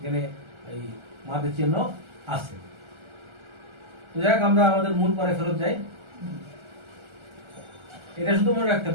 এই মাদের চিহ্ন আছে। তো যাই হোক, আমরা আমাদের মূল পরে ফেরত যাই। এটা শুধু মনে রাখতে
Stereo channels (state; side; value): late; left; 1.4 ms